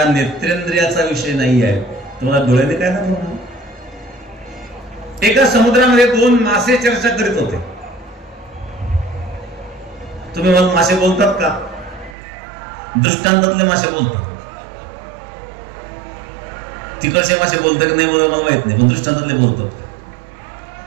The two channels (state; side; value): drops out; left; at 12.2 s